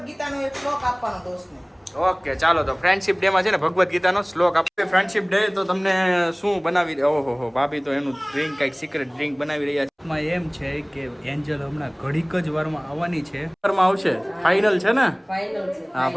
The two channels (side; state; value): both; identical; correlation 1.00